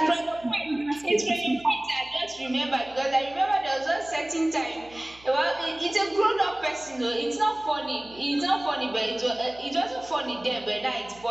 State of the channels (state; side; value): noise; right; hum, 24 dB below the sound